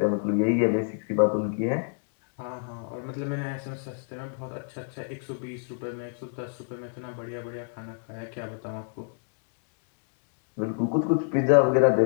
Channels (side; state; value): right; silent; digital silence